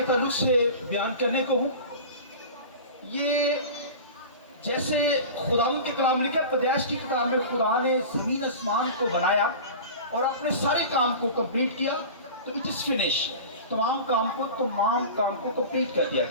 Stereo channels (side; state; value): both; inverted; correlation -0.34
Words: ताल्लुक से बयान करने को हूँ, ये जैसे खुदावंद के कलाम ने क्या पैदाइश की किताब में खुदा ने ज़मीन आसमान को बनाया और अपने सारे काम को कंप्लीट किया, तो इट इज़ फिनिश, तमाम काम को कंप्लीट कर दिया